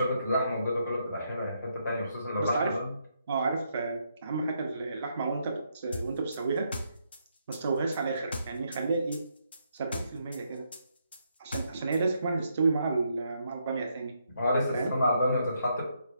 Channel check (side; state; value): both; inverted; correlation -0.77